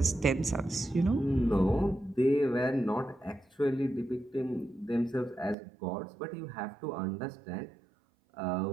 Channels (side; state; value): left; drops out; at 5.6 s